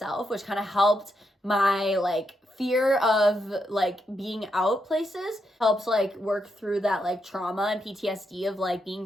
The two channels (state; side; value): normal; both; correlation 0.82